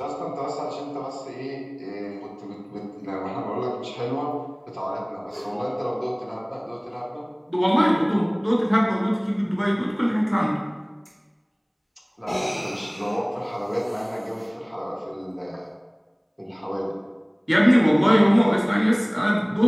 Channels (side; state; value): both; identical; correlation 1.00